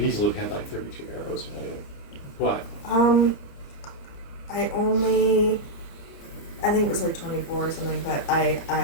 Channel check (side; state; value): right; late; 29 ms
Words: easily have had like 32 arrows. But I think it was like 24 or something, but